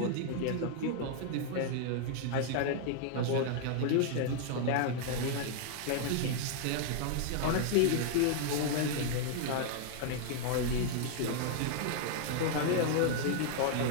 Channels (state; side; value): different; both; correlation 0.00